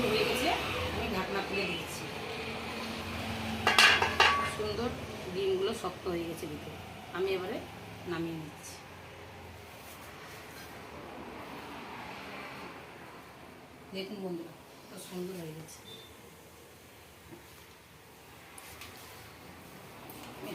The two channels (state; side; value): identical; both; correlation 1.00